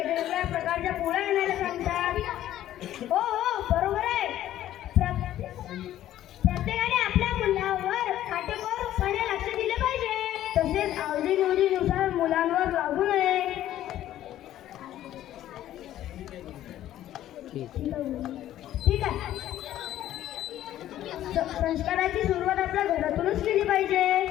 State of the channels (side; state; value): right; quieter; 12.8 dB